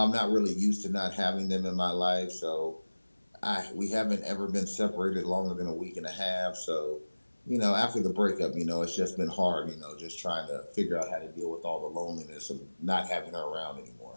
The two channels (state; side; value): inverted; both; correlation -1.00